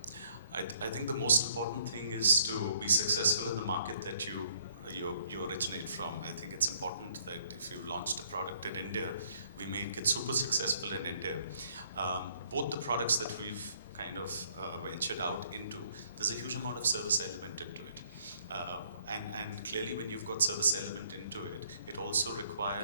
I think the most important thing is to be successful in the market that you originate from. I think it's important that if you launched a product in India, we make it super successful in India. Both the products that we've kind of ventured out into, there's a huge amount of service element into it. And clearly when you've got service element into it, it also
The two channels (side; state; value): both; inverted; correlation -0.64